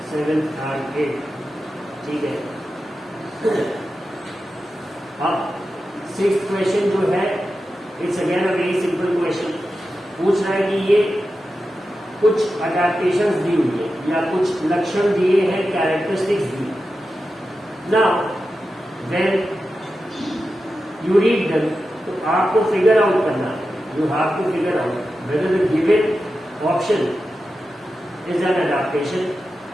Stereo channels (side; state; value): both; normal; correlation 0.91